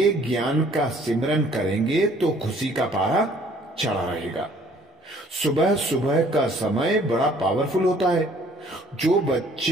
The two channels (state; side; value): normal; both; correlation 0.58